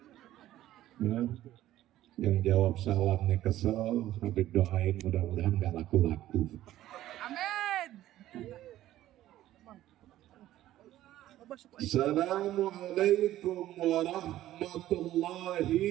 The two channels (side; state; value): left; quieter; 13.9 dB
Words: Ya. Yang jawab salamnya kesel, sampai doain mudah-mudahan gak laku-laku. Amin. Assalamualaikum